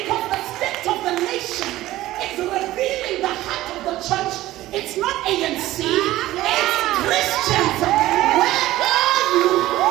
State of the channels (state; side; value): quieter; left; 15.9 dB